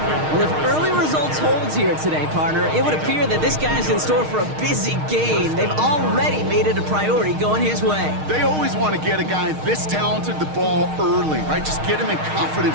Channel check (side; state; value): left; late; 6.5 ms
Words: Well, if early results hold here today, partner, it would appear that this guy's in store for a busy game. They've already made it a priority going his way. They always want to get a guy this talented the ball early, right? Just get him in